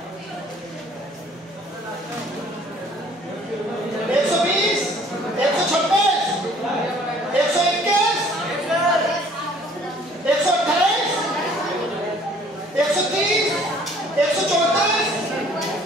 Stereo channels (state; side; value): normal; both; correlation 0.56